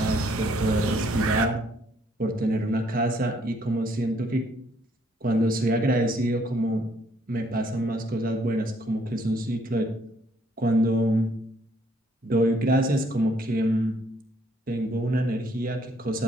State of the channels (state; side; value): normal; both; correlation 0.67